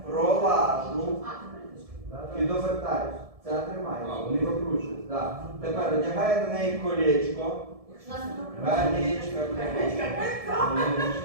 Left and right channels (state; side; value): late; left; 1.7 ms